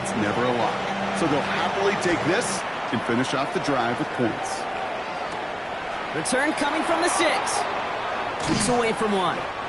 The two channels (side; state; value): both; identical; correlation 1.00